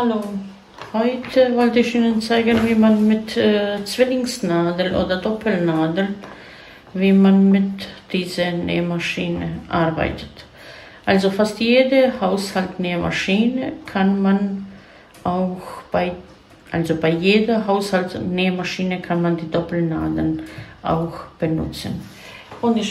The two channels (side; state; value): both; identical; correlation 1.00